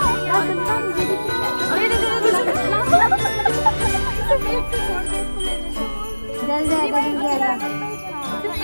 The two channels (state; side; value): inverted; both; correlation -1.00